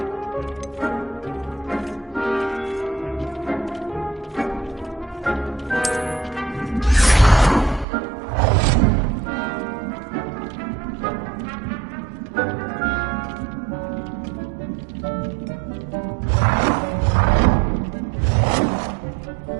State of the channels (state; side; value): drops out; left; at 7.9 s